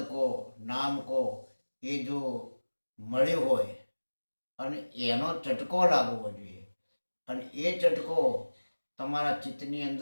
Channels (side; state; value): both; inverted; correlation -1.00